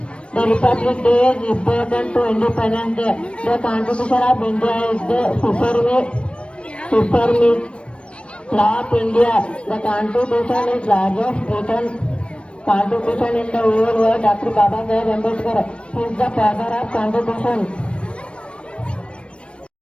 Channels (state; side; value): late; right; 0.059 ms